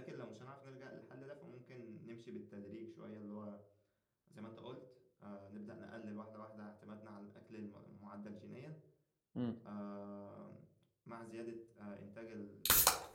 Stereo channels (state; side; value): identical; both; correlation 1.00